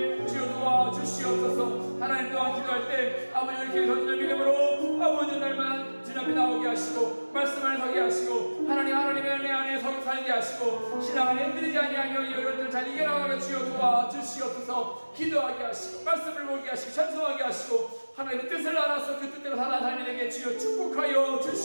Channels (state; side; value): inverted; both; correlation -1.00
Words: 주여 도와주시옵소서. 하나님 또한 기도할 때 아버지 이렇게 던지는 믿음으로 아버지 날만 주님 앞에 나오게 하시고 말씀 안에 서게 하시고 하나님의 은혜 안에 살게 하시고 신앙 안에 흔들리지 아니하며 이 어려움들 잘 이겨나가며 주여 도와주시옵소서. 기도하게 하시고 말씀을 보게 하시고 찬송하게 하시고 하나님의 뜻을 알아서 그 뜻대로 살아가는 자에게 주여 축복하여